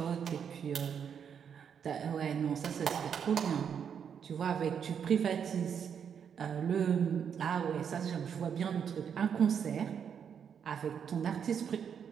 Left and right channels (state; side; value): quieter; left; 7.6 dB